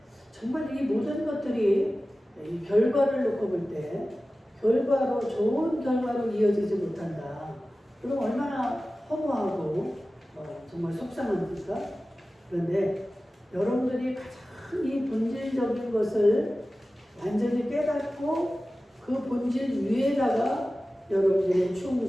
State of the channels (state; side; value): normal; both; correlation 0.96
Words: 정말 이 모든 것들이 이 결과를 놓고 볼 때 결과로 좋은 결과로 이어지지 못한다. 그럼 얼마나 허무하고 정말 속상합니까? 그런데 여러분들이 가장 이 본질적인 것을 완전히 깨닫고 그 본질 위에다가 여러분들의